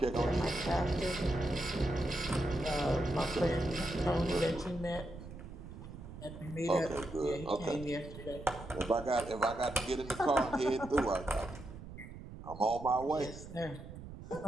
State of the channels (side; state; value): right; noise; rumble, 13 dB below the sound